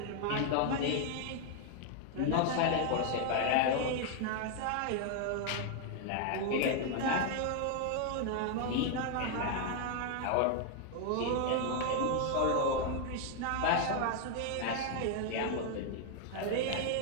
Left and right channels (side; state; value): both; different; correlation 0.00